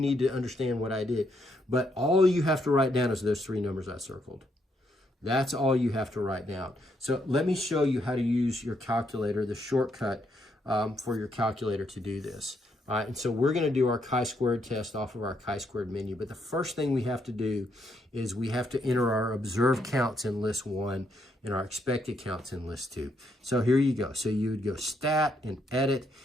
to understand what I did, but all you have to write down is those 3 numbers I circled. That's all you have to write down. So let me show you how to use your calculator, the shortcut for your calculator to do this. All right, and so we're going to do our chi-squared test off of our chi-squared menu. But the first thing we have to do is we have to enter our observed counts in list 1 and our expected counts in list 2. So here you go. So you would go stat and edit,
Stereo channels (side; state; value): both; normal; correlation 0.75